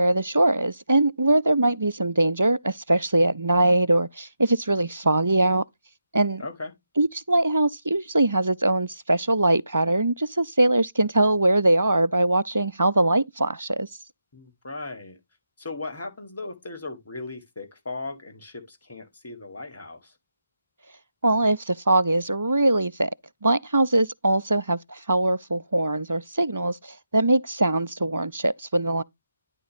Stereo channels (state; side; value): inverted; both; correlation -0.87